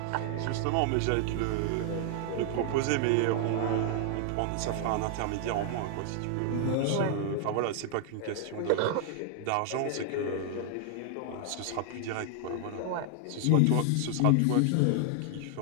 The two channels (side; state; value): both; different; correlation 0.00